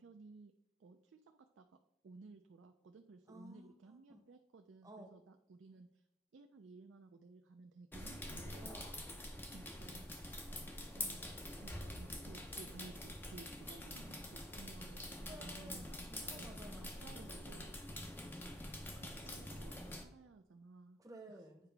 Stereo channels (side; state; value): both; normal; correlation 0.57